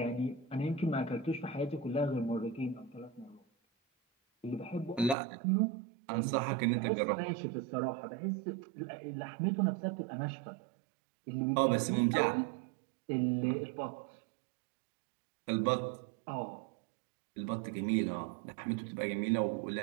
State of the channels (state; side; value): drops out; left; at 5.2 s